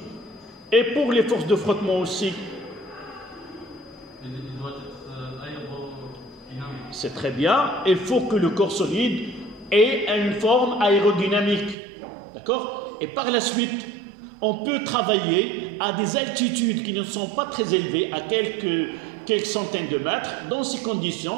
Et pour les forces de frottement aussi. Il doit être aérodynamique. C'est très bien. Il faut que le corps solide ait une forme aérodynamique. D'accord? Et par la suite, on peut travailler à des altitudes qui ne sont pas très élevées, à quelques centaines de mètres. Dans ces conditions,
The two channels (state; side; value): drops out; left; at 11.8 s